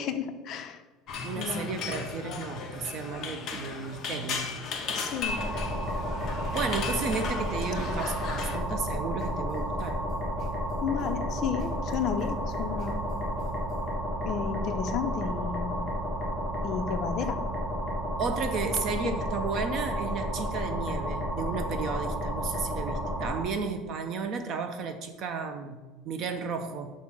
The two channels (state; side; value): normal; both; correlation 0.49